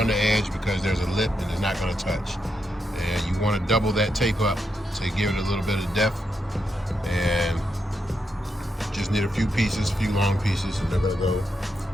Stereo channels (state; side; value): normal; both; correlation 0.83